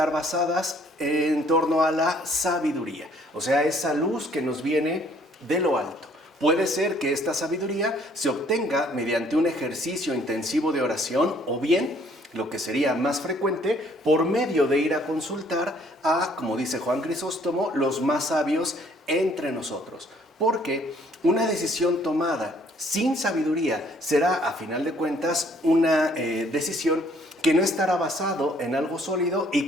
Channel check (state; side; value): normal; both; correlation 0.62